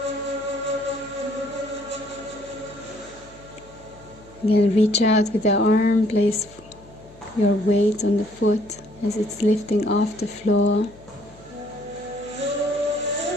Again, reach out with the arm, place your weight on the foot as it's lifting off the floor.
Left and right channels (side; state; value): left; noise; hum, 25 dB below the sound